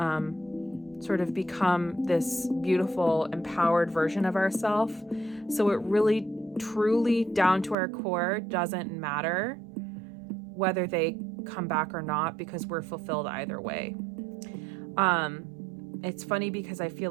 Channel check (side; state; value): left; drops out; at 7.8 s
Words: sort of become this beautiful, empowered version of ourselves. So it really, truly, down to our core, doesn't matter whether they come back or not, because we're fulfilled either way. It's funny because I feel